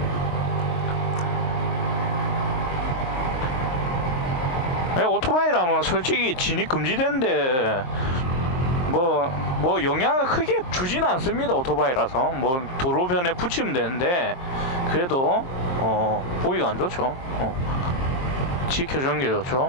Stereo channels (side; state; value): right; late; 23 ms